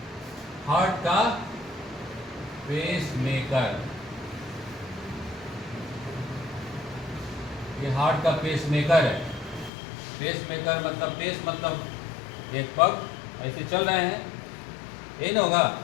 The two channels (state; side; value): drops out; right; at 9.7 s